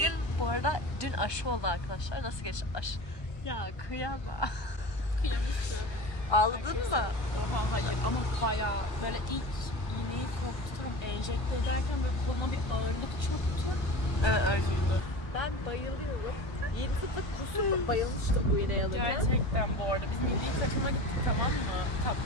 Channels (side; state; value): right; late; 1.2 ms